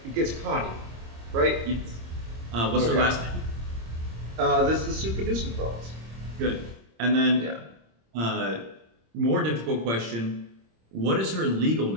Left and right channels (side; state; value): left; late; 26 ms